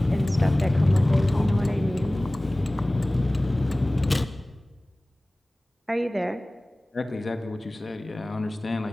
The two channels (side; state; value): both; normal; correlation 0.98